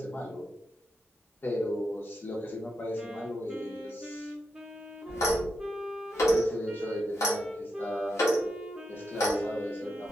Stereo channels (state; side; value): normal; both; correlation 0.84